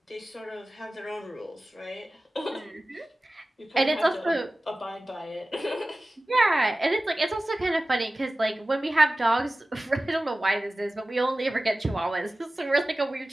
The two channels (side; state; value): both; normal; correlation 0.96